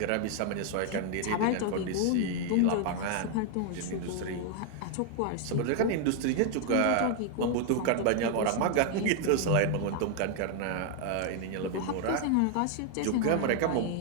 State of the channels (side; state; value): both; different; correlation 0.00